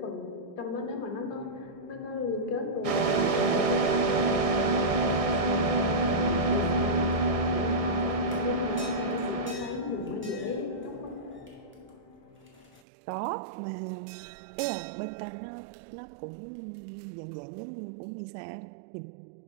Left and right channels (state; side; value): drops out; left; at 12.9 s